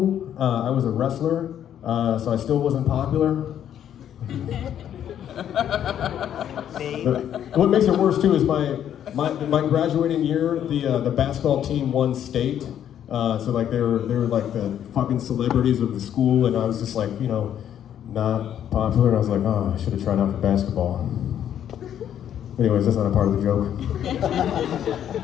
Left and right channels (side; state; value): right; quieter; 10.0 dB